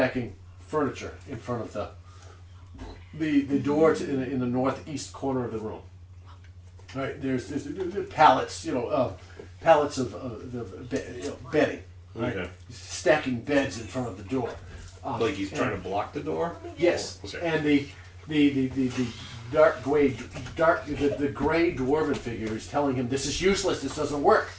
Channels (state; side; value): identical; both; correlation 1.00